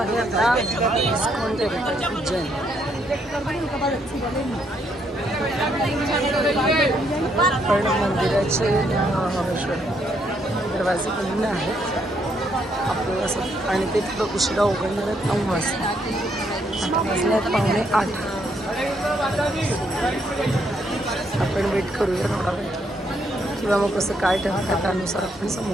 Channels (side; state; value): both; normal; correlation 0.73